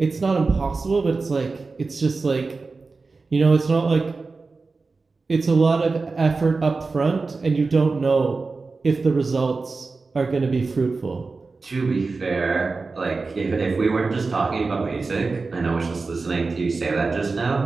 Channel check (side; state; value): left; quieter; 4.0 dB